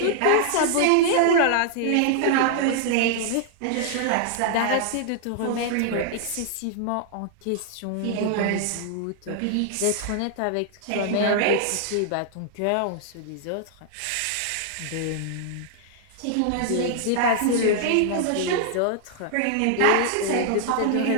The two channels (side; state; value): both; different; correlation -0.01